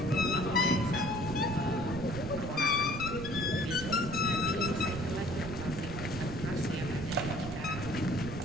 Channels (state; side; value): noise; right; rumble, 8 dB below the sound